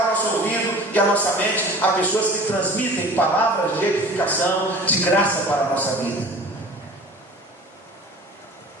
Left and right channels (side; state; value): both; normal; correlation 0.42